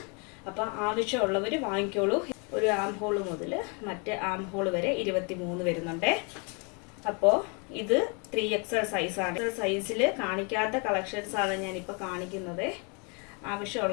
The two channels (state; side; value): quieter; right; 34.3 dB